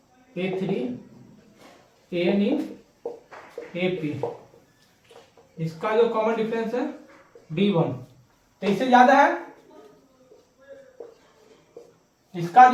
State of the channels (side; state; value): both; identical; correlation 1.00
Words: A3 AN in AP, इसका जो कॉमन डिफरेंस है D1 तो इससे ज्यादा है। इसका